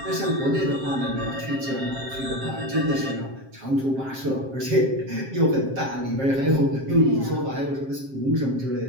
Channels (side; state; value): left; late; 7.5 ms